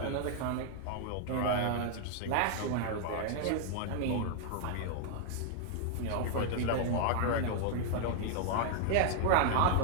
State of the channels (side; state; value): both; different; correlation -0.01